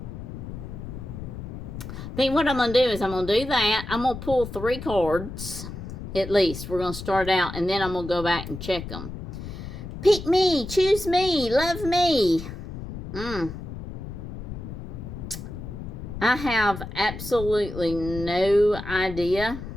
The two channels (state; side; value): noise; left; rumble, 9 dB below the sound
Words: I think what I'm going to do is I'm going to do that. I'm going to pull 3 cards. At least. We're going to start out and then I'm going to go back and check them. Pick me. Choose me. Love me. I have absolutely no idea.